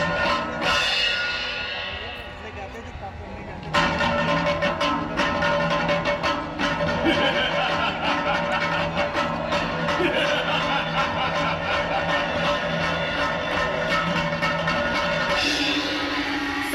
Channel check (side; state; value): both; identical; correlation 1.00